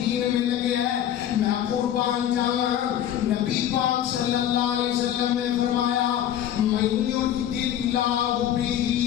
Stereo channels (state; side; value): quieter; right; 10.8 dB